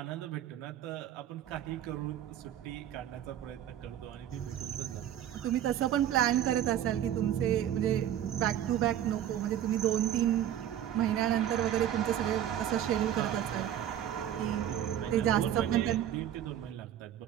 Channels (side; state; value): left; quieter; 10.9 dB